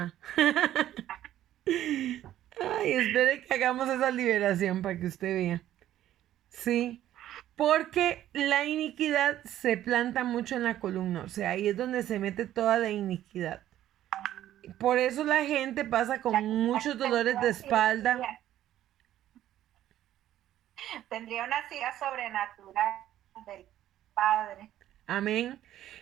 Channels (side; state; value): left; quieter; 12.5 dB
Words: Ay, espere que hagamos esa liberación para que usted vea. Sí, porque la iniquidad se planta mucho en la columna, o sea, ahí es donde se mete toda la iniquidad. Por eso la gente pasa con muchos dolores de espalda. Tendría una silla sobrenatural del Padre. Amén.